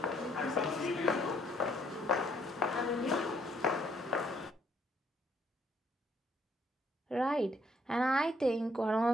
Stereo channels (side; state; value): both; normal; correlation 0.68